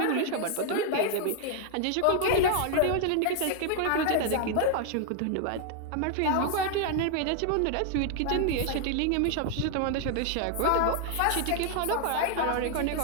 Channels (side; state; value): both; different; correlation 0.00